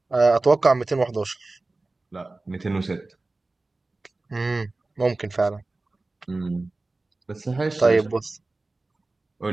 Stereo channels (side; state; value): left; quieter; 3.2 dB